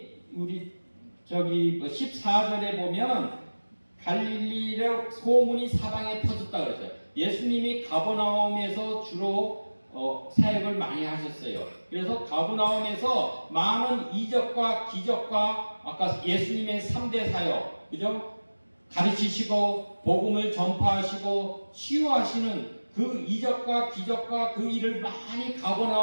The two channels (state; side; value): inverted; both; correlation -1.00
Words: 우리 14절에 보면 갈릴리의 소문이 사방에 퍼졌다 그랬어요. 예수님이 가버나움에서 주로 사역을 많이 하셨어요. 그래서 가버나움에서 많은 이적과 기적과 아까 예수님의 3대 사역, 그죠? 가르치시고 복음을 전파하시고 치유하시는 그 이적과 기적과 그 일을 많이